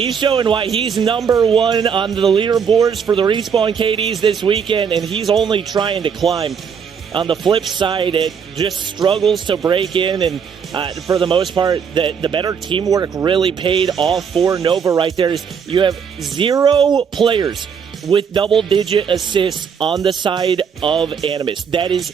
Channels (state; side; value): quieter; left; 6.8 dB